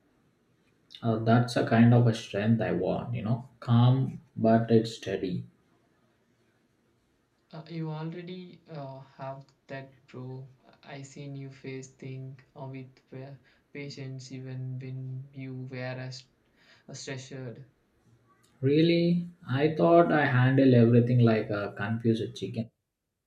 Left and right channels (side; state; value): both; identical; correlation 1.00